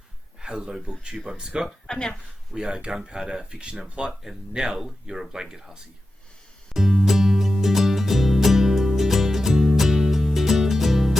BookTube, I'm Scott. I'm Nelle. We are Gunpowder, Fiction and Plot, and Nelle, you're a blanket hussy.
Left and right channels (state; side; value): normal; both; correlation 0.92